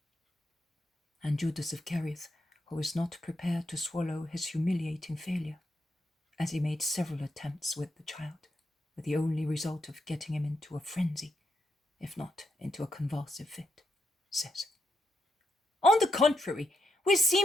And Judas of Kerioth, who was not prepared to swallow his humiliating failure, as he made several attempts with the child, with the only result of getting him into a frenzy, if not into a convulsive fit, says, "On the contrary, we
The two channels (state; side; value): normal; both; correlation 0.82